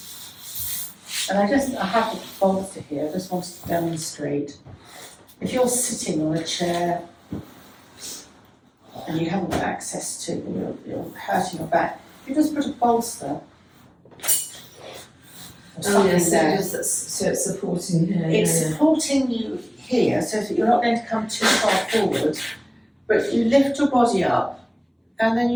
And I have a bolster here, I just wanted to demonstrate. If you're sitting on a chair and you haven't got access to, you're hurting your back, you just put a bolster. Oh yes, so it's supporting here. It's supporting you here so that you're not going to come too far forward. But you lift your body up and then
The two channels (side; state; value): both; identical; correlation 1.00